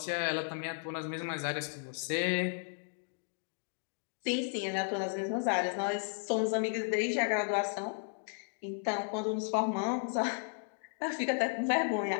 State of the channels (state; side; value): silent; right; digital silence